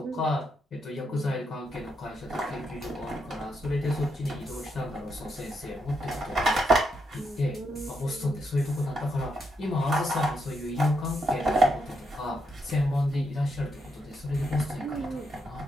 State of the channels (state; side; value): normal; both; correlation 0.80